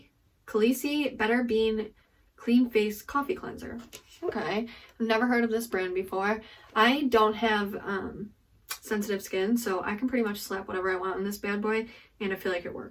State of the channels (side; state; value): both; identical; correlation 1.00